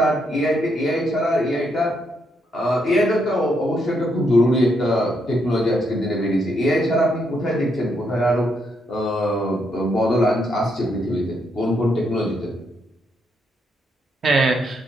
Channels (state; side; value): normal; both; correlation 0.77